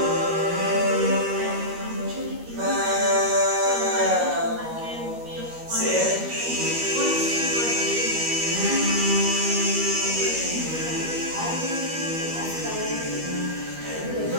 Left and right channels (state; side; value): late; left; 12 ms